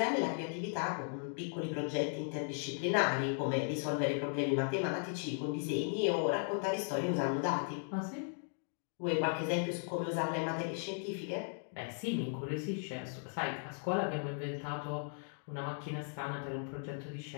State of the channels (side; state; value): right; silent; 53 dB below the other